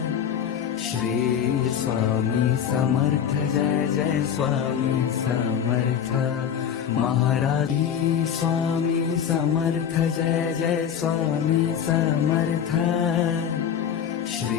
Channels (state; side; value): quieter; right; 8.6 dB